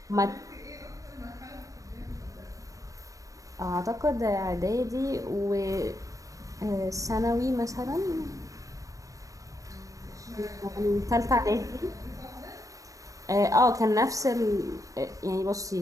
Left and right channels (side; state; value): left; late; 0.16 ms